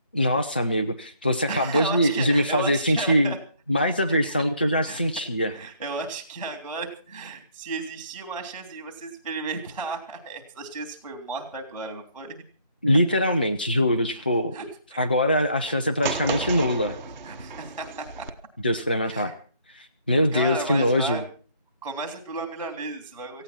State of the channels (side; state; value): both; inverted; correlation -0.64